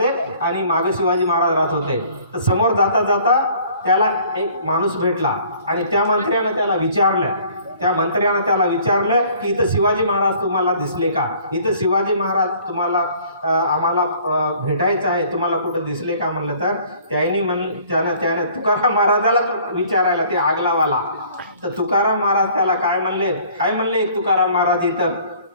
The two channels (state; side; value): inverted; both; correlation -0.54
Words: आणि मागे शिवाजी महाराज राहत होते. तर समोर जाता जाता त्याला एक माणूस भेटला आणि त्या मंत्र्यानं त्याला विचारलं की इथं शिवाजी महाराज तुम्हाला दिसले का, इथं शिवाजी महाराज तुम्हाला आम्हाला भेटायचं आहे, तुम्हाला कुठं दिसले का म्हणलं. तर त्याने तुकाराम महाराजाला विचारायला ते आगलावाला. तर तुकाराम महाराज त्याला काय म्हणले एक तुकाराम महाराज